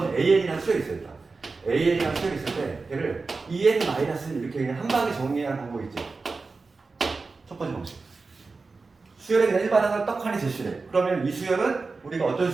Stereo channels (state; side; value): quieter; left; 4.1 dB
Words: AN이라는 수열이 있어요. AN이라는 수열이 있을 때 얘를 EN- 이렇게 그냥 한 방에 정리하는 방법이 있지. 첫 번째 방식. 수열에 그냥 일반항을 떡하니 제시해. 그러면 이 수열은 우리가 어떤